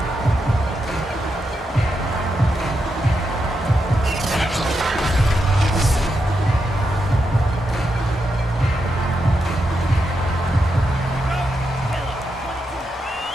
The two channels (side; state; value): both; normal; correlation 0.84